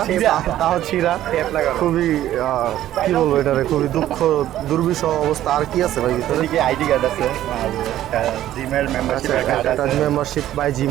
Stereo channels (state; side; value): quieter; left; 12.9 dB